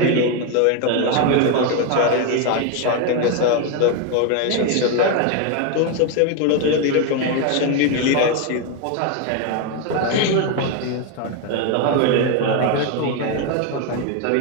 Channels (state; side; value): different; both; correlation 0.02